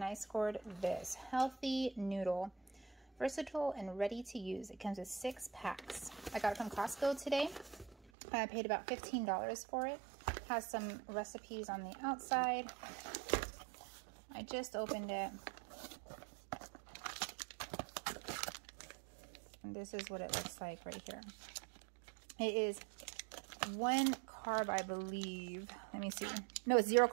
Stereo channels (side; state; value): left; drops out; at 8.0 s